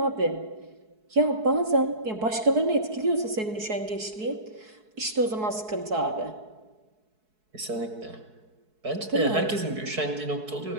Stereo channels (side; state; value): left; late; 4.7 ms